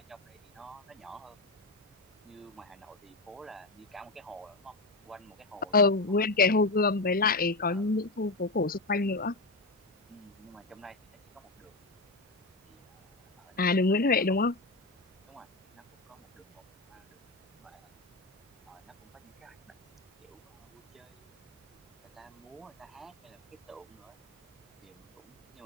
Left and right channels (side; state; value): right; quieter; 3.1 dB